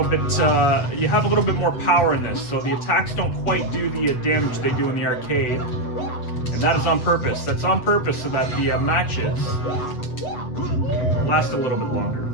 bit, you have a little bit more power in this, so the attacks don't quite do the damage they do in the arcade. And that is on purpose. That's on purpose so that the matches last a little bit longer.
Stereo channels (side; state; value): right; late; 8.0 ms